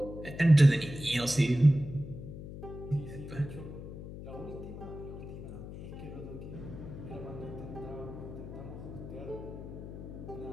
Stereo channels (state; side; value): noise; left; hum, 10 dB below the sound